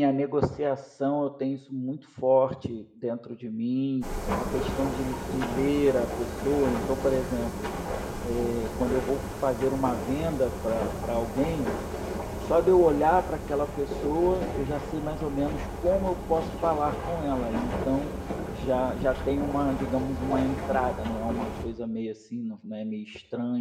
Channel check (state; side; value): identical; both; correlation 1.00